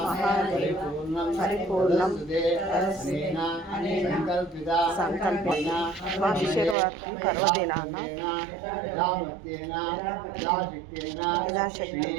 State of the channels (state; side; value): drops out; left; at 6.8 s